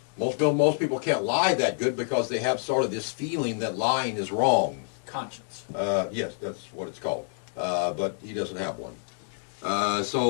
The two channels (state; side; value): silent; right; 57 dB below the other